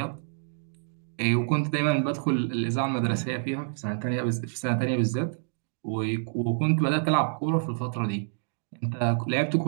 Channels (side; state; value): left; silent; digital silence